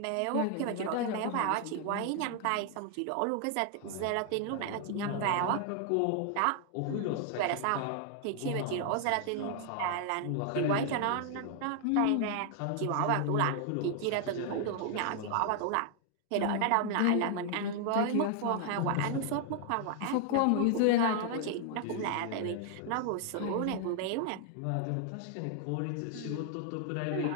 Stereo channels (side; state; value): both; different; correlation 0.00